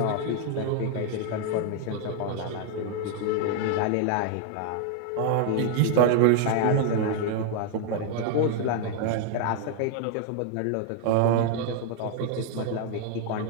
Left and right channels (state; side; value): different; both; correlation 0.00